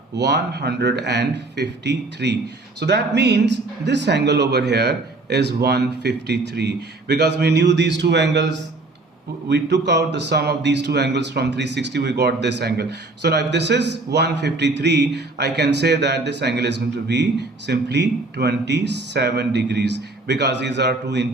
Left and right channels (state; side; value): quieter; left; 3.1 dB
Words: So that means this angle over here is 153, because we knew these two angles, we took out the sum of these two angles from 360, we got this angle. So now if this is 153, I can say that this angle is going to be simply 27 degrees, because these are two